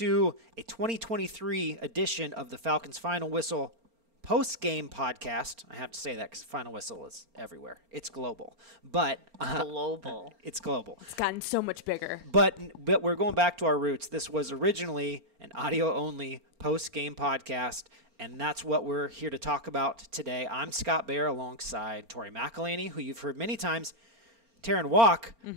a 2023 edition of the Falcons Final Whistle post-game podcast. I have to say that because Final Whistle is everywhere. It's global. But global. It's global. It's gotten so much bigger. But we're going back to our roots. This was originally an audio-only post-game podcast, and that's what we're here to talk about today. I'm Scott Bair alongside Tori McElhaney, who you've heard many times, Terrin Waack,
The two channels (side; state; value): left; late; 4.4 ms